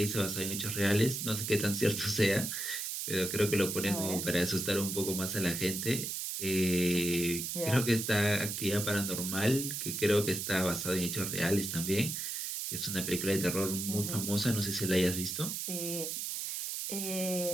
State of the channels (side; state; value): right; noise; hiss, 3 dB below the sound